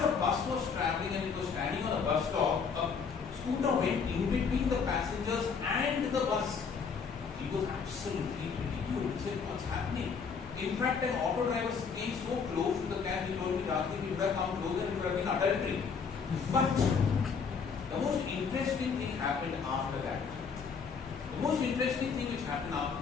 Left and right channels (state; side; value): quieter; right; 5.8 dB